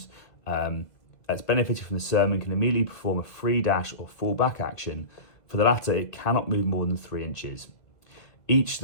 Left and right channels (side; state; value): right; late; 2.1 ms